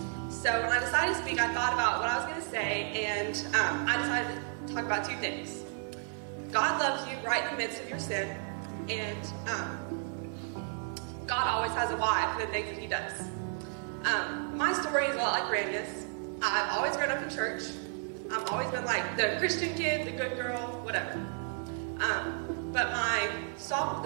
so when I decided to speak, I thought about what I was going to say, and I decided to talk about two things. God loves you right in the midst of your sin, and God always has a why for the things that he does. My story is a lot like Brandy's. I've always grown up in church. I've always been like the Christian kid, the good girl, whatever. But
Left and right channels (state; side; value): silent; left; 56 dB below the other